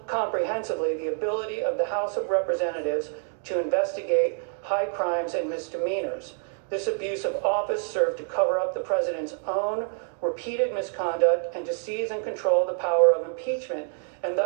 comprehensively the ability of the House of Representatives to investigate high crimes and misdemeanors. This abuse of office served to cover up the president's own repeated misconduct and to seize and control the power of impeachment, and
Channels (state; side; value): silent; left; 58 dB below the other